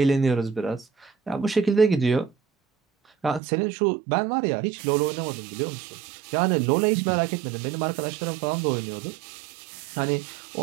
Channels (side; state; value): left; drops out; at 3.4 s